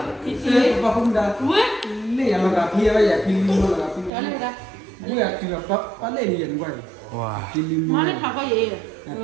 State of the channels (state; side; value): drops out; left; at 4.1 s